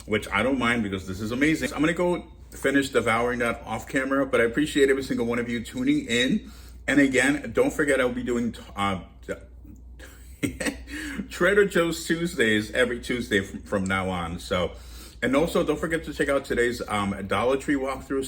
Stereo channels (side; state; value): both; identical; correlation 1.00